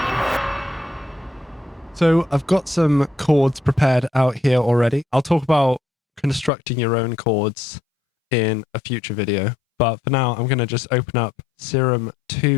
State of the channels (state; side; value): drops out; right; at 6.5 s